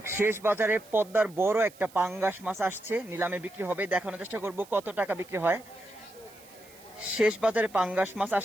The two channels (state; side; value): noise; right; hiss, 23 dB below the sound